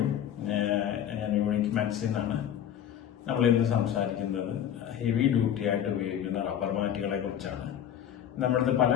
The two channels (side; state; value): right; quieter; 10.0 dB